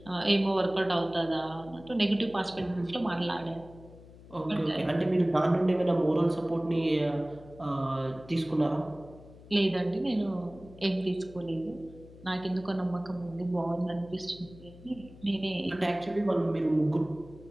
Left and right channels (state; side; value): noise; left; hum, 20 dB below the sound